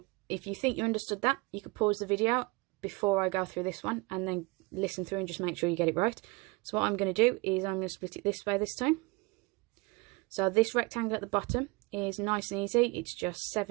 if you think you understood that, you could pause the video before I go through this one and then listen through and just make sure you get it right. So what I'm going to do is I'm going to split it this way this time. So this rectangle at the bottom is nice and easy. It's just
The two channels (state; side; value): quieter; left; 25.6 dB